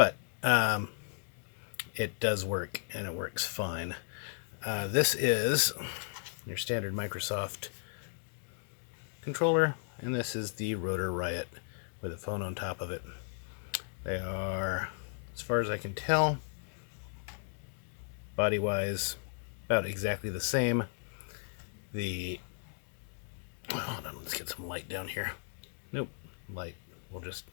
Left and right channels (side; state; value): right; silent; digital silence